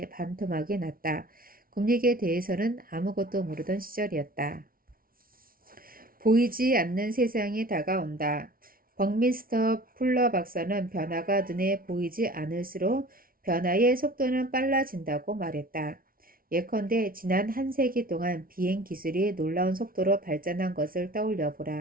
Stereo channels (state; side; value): late; left; 0.43 ms